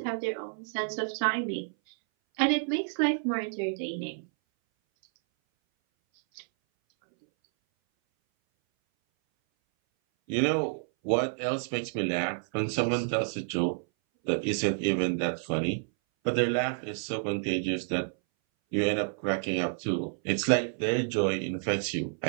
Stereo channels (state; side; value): silent; left; 58 dB below the other